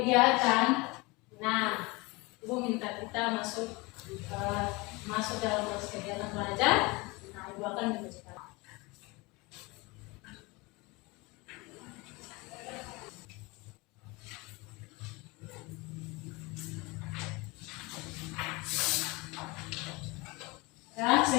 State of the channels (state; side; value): quieter; right; 25.1 dB